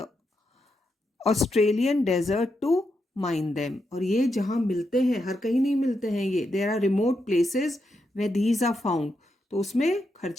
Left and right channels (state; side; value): normal; both; correlation 0.84